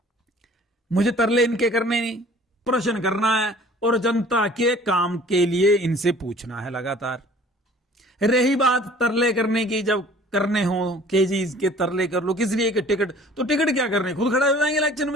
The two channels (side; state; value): both; normal; correlation 0.50